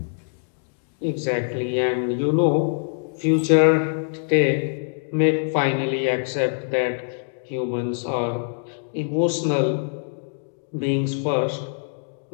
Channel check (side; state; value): right; silent; digital silence